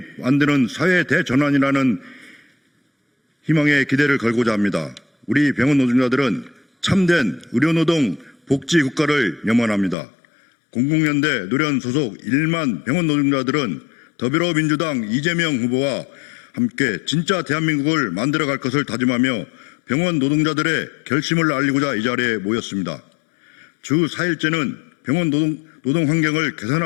만드는 사회 대전환이라는 희망의 기대를 걸고자 합니다. 우리 병원 노동자들은 참된 의료노동 복지 국가를 염원합니다. 공공연대 노련 소속 1만 병원 노동자들은 더불어민주당 이재명 후보와 함께 진짜 대한민국을 만들어갈 것을 다짐하며 병원 노동자들의 결심을 알리고자 이 자리에 모였습니다. 주 4일제는 병원 노동 환경을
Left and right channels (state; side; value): drops out; right; at 10.0 s